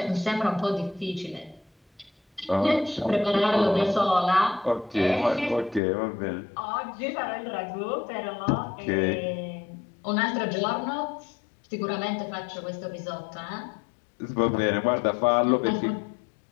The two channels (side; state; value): right; drops out; at 5.8 s